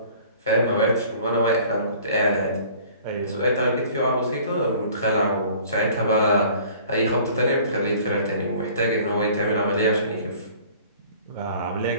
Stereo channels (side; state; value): both; inverted; correlation -0.50